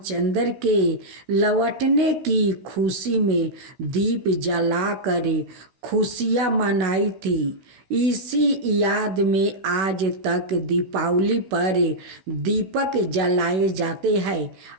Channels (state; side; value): late; left; 16 ms